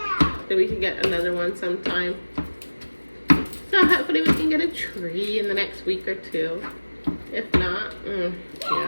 so we can get another one sometime. So hopefully we can get a tree in the next week or two. If not,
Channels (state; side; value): inverted; both; correlation -1.00